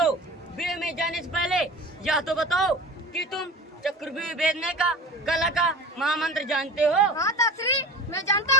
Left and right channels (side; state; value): both; normal; correlation 0.35